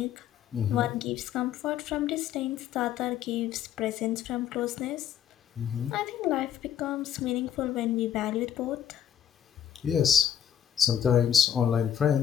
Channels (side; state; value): right; quieter; 9.5 dB